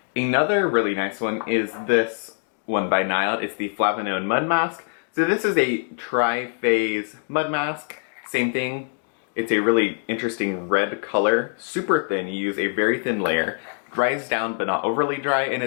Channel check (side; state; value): right; silent; 59 dB below the other